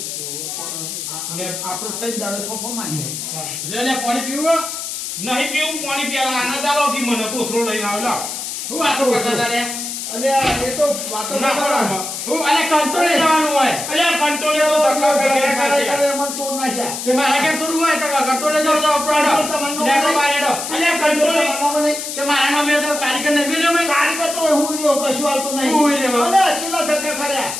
લે, આપણો તઈ દાડે ફોફો મારીએ લે પાણી પીવું? નહીં પીવું પાણી પીવા આનંદ આલો કે મને કોથરો લઈને આવ લાવ. હું વાતો કરતા હતા રે? અલે એ તો વાતો ના ના કરો. કરો હું અને કંટ્રોલે જવાનું હોય. અલે કંટ્રોલે તો ધક્કા ખાઈ ખાઈ ખાઈ. મને તોડ નાખ્યા તે મારા ઘેર થોડું હોય તો કંટ્રોલે જાવ તો આપણો તમને લેકો બારેડો. અલે કંટ્રોલ કરવાનો નહીં. તે મારા નામે તો કારીગર નહીં મેલ્યો મેં. કારીગર તો હું રહ્યો, કશું આવતું નહીં. હું રહ્યો. અલે, છેલ્લા ધક્કા ખર્યા.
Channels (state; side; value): noise; left; hiss, 6 dB below the sound